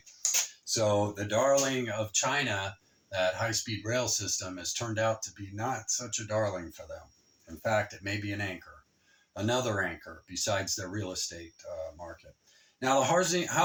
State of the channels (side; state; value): both; identical; correlation 1.00